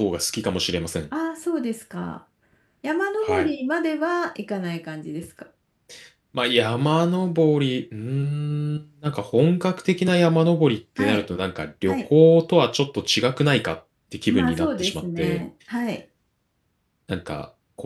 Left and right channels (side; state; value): both; identical; correlation 1.00